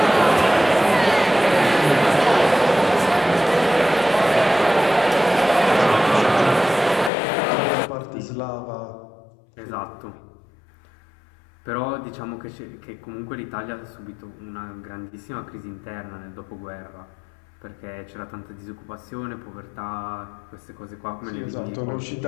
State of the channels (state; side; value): drops out; right; at 7.1 s